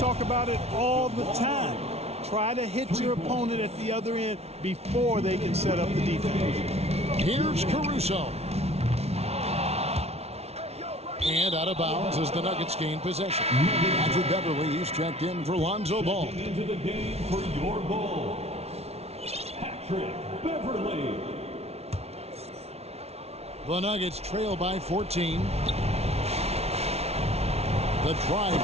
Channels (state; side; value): late; left; 0.31 ms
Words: about it all the time. Try to hit your opponent at the other end before they can set up the defense. Here's Caruso. And out of bounds as the Nuggets gain possession. Andrew Beverly, he's checked in for Lonzo Ball. Into the game for your Bulls, Patrick Beverly. The Nuggets trail by 14. The drive